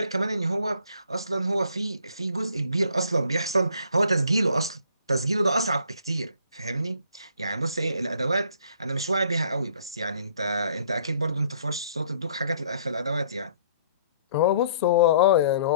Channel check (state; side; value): inverted; both; correlation -0.60